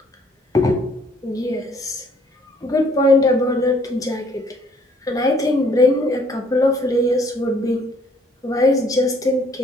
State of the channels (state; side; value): normal; both; correlation 0.62